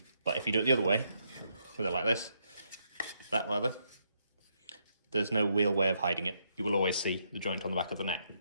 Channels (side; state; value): both; inverted; correlation -0.77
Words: But if you do it the other way, with it like this, that rather, there's no real way of hiding it. You will always see the joint on the back of the neck.